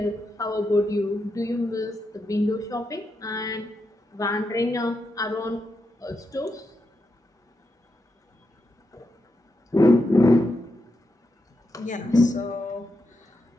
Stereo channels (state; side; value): normal; both; correlation 0.85